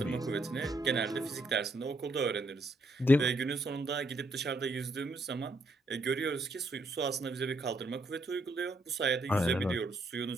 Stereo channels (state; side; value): normal; both; correlation 0.73